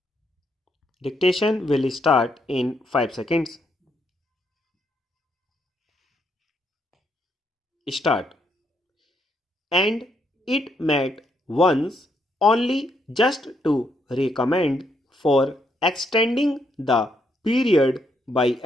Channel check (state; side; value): normal; both; correlation 0.76